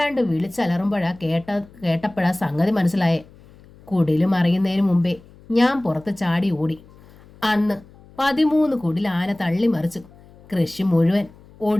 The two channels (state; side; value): noise; left; hum, 24 dB below the sound